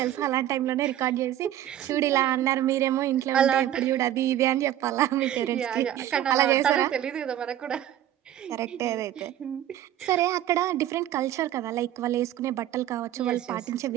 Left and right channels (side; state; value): left; quieter; 12.0 dB